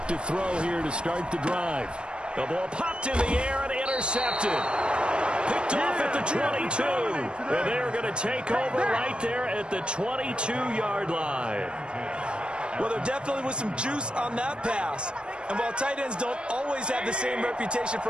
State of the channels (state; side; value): late; left; 0.055 ms